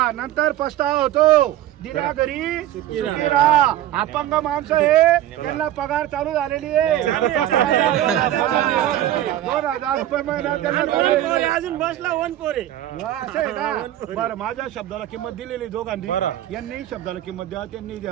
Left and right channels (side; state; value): left; quieter; 13.0 dB